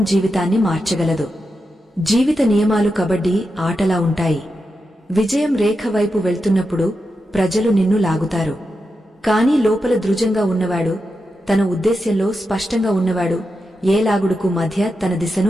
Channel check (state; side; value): normal; both; correlation 0.88